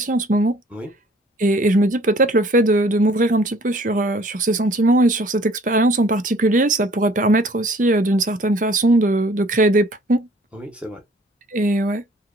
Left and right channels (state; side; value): normal; both; correlation 0.55